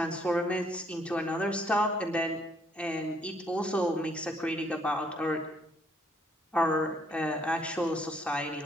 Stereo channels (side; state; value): both; normal; correlation 0.67